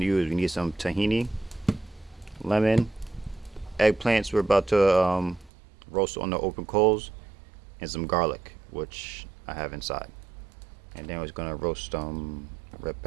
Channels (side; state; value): left; drops out; at 5.5 s